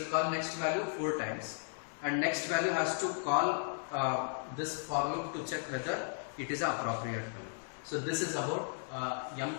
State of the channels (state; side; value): silent; right; digital silence